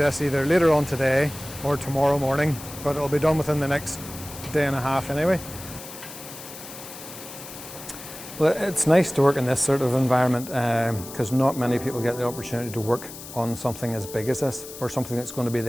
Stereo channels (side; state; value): left; noise; hiss, 13 dB below the sound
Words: either later on today or tomorrow morning, but it'll be done within the next day and a half anyway. Well, it's nice to work in this sort of environment because not many people get the opportunity to work on something as big as this, or something that's going to be